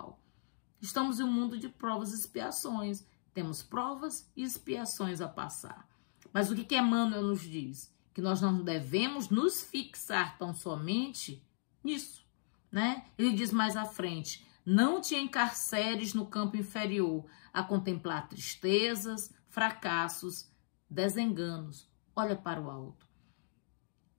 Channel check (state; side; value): silent; right; digital silence